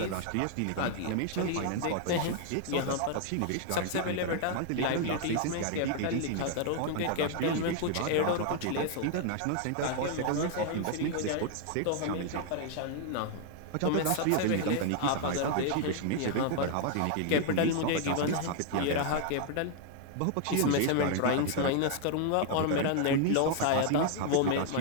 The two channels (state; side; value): different; both; correlation 0.00